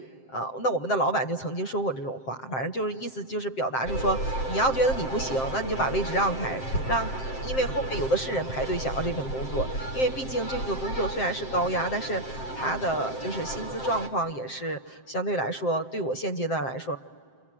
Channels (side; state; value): right; late; 7.6 ms